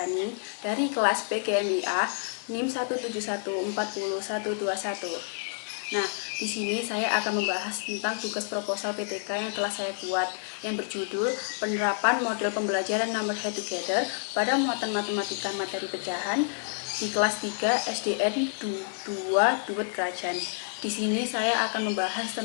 dari kelas PGMIA NIM 171402121. Nah, di sini saya akan membahas tentang tugas proposal PTK yang telah saya buat yang berjudul Penerapan Model Pembelajaran Number Head Together pada muatan matematika materi pecahan di kelas 3 SDN 2 Duet Kerajaan. Di sini saya akan membahas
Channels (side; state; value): right; silent; digital silence